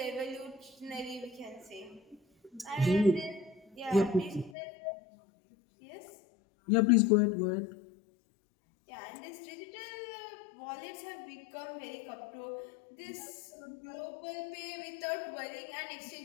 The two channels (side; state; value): right; drops out; at 4.5 s